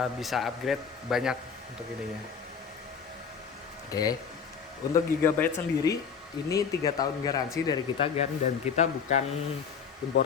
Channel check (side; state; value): right; quieter; 6.4 dB